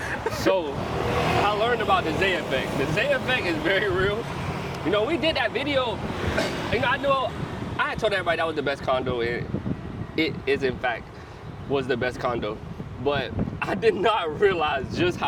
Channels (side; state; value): both; identical; correlation 1.00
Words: So, I learned about the Zay effect. The Zay effect is very real. You know, we did that video, you know, I had told everybody that was the best condo, and it is in fact was the best condo. But I did not realize just